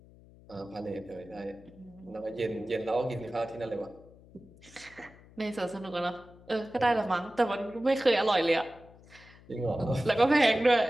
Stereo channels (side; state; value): left; noise; hum, 24 dB below the sound